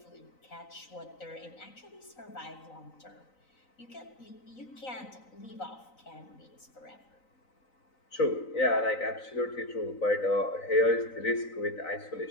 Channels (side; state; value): right; late; 3.9 ms